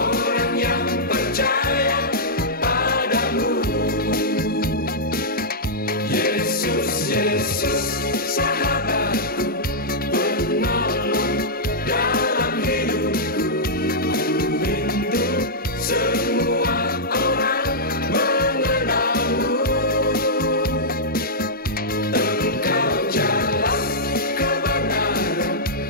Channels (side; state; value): both; normal; correlation -0.10